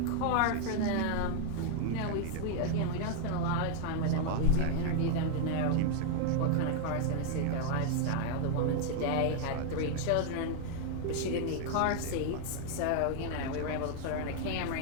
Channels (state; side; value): different; both; correlation 0.00